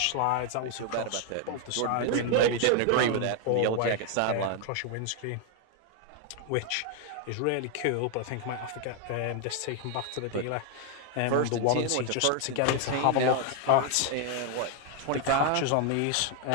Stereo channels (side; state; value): both; different; correlation 0.00